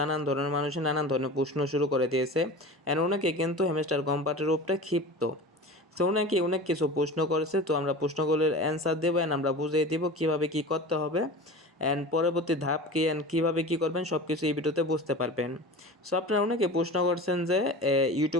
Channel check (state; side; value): normal; both; correlation 0.34